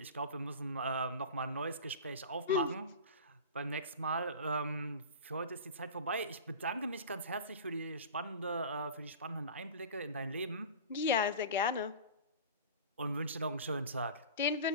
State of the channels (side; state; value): both; inverted; correlation -0.35